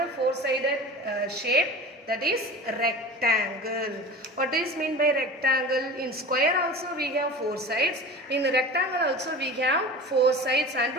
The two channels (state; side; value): normal; both; correlation 0.35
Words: four-sided shape, that is rectangle. What is mean by rectangle? In square also we have four sides, in rectangle also we have four sides and